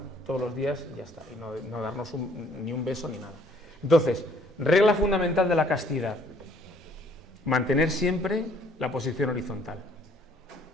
todos los días y ya está, y no darnos ni un beso ni nada. Entonces, regla fundamental de la castidad: mantener siempre la posición horizontal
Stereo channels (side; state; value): both; normal; correlation 0.61